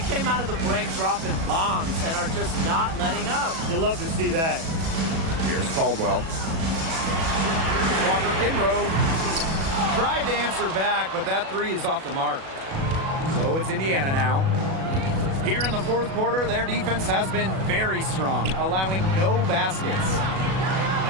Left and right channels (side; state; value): left; late; 37 ms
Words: out of the break dropping bombs and are just not letting up. You'll love to see that. Here's Caldwell. Here's Walker Kimbrough. Tried to answer back, but that 3 is off the mark. So it's Indiana now. Here in the 4th quarter, their defense has been very strong, allowing no baskets.